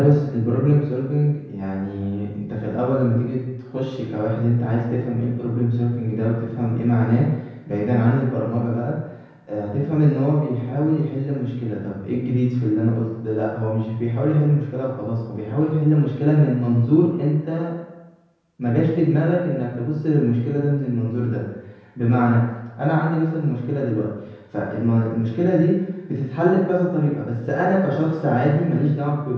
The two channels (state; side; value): identical; both; correlation 1.00